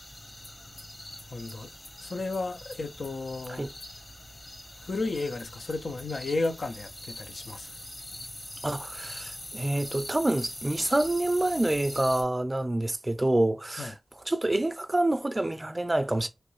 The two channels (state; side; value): normal; both; correlation 0.97